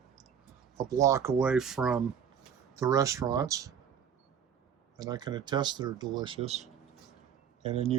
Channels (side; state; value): left; quieter; 8.0 dB